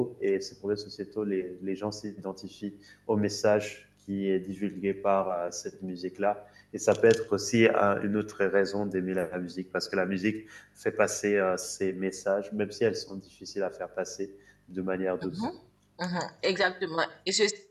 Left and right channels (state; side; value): identical; both; correlation 1.00